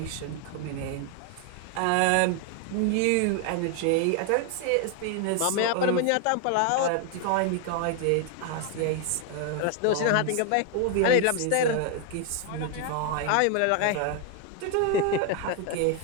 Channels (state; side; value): different; both; correlation 0.00